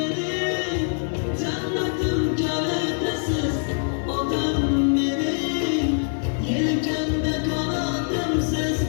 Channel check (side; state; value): right; silent; 61 dB below the other